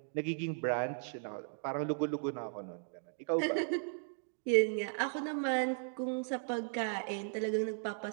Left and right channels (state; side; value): silent; left; digital silence